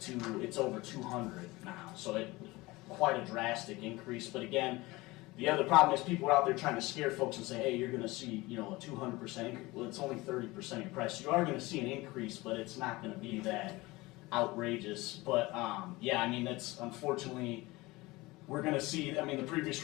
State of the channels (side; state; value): right; quieter; 21.2 dB